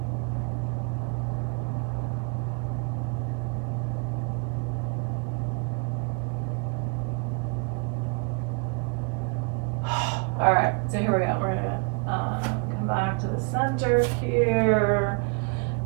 All right, so here we go. We're gonna come back to the center here.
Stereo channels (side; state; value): left; quieter; 35.9 dB